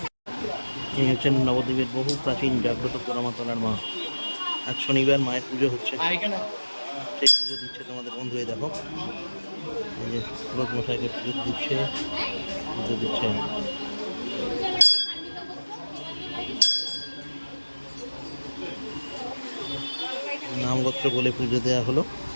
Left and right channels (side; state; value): both; inverted; correlation -1.00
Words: এই হচ্ছেন নবদ্বীপের বহু প্রাচীন জাগ্রত পোড়ামাতলার মা। আজ শনিবার মায়ের পুজো হচ্ছে, সেই পুজো দিচ্ছে তোমাদের বন্ধু। এই দেখো, এই যে পুরোহিত মশাইকে পুজো দিচ্ছে। নামগোত্র বলে পুজো দেওয়া হলো।